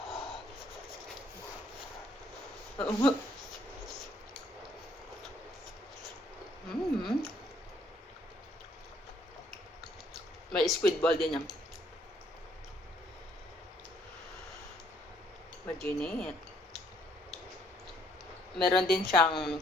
May squid ball din yan. Maginit. Meron din siyang,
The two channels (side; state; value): both; normal; correlation 0.65